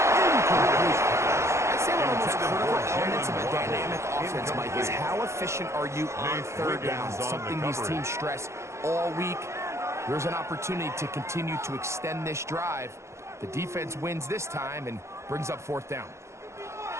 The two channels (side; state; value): left; late; 0.14 ms